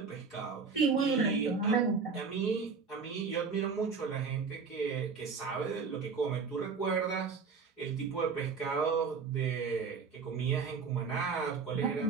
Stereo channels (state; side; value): quieter; left; 5.3 dB